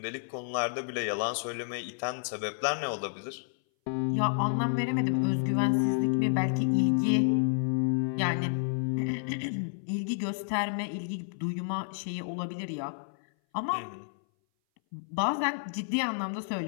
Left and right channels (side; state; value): right; silent; 58 dB below the other